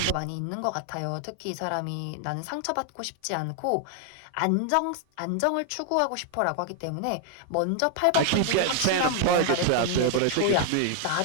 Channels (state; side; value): different; both; correlation 0.00